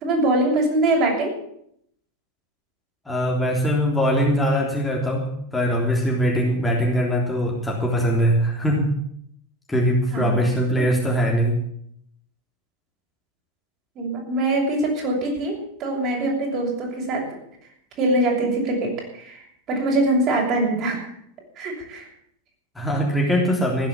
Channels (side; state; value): both; normal; correlation 0.27